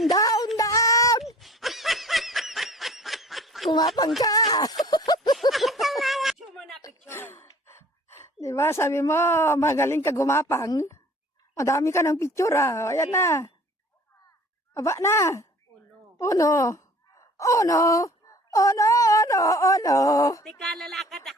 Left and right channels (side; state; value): both; normal; correlation 0.49